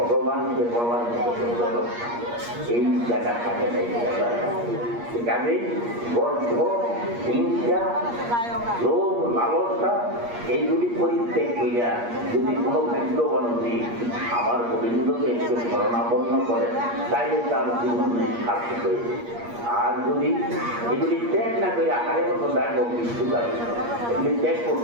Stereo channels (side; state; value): left; late; 8.5 ms